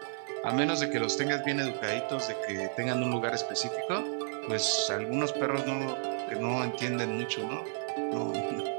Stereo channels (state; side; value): silent; left; digital silence